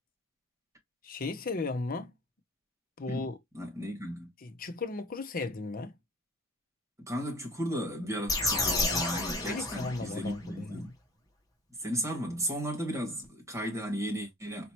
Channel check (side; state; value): both; normal; correlation 0.48